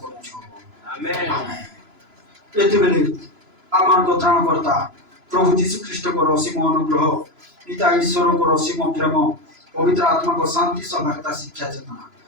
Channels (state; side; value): late; left; 3.0 ms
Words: करूछ आमेन आमेन एते बेले আমার ত্রাণকর্তা প্রভু যীশু খ্রিস্টଙ୍କର ଅସୀମ ଅନୁଗ୍ରହ ପିତା ଈଶ୍ୱରଙ୍କର ଅସୀମ ପ୍ରେମ ପବିତ୍ର ଆତ୍ମାଙ୍କ ଶାନ୍ତି ସଭାଗତା ଶିକ୍ଷା ଚେତନା